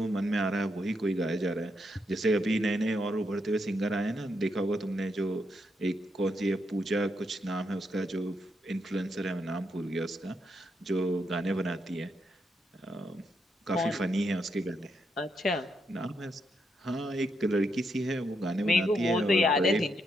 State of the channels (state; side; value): normal; both; correlation 0.80